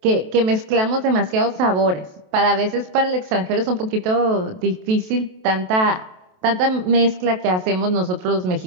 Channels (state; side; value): late; left; 28 ms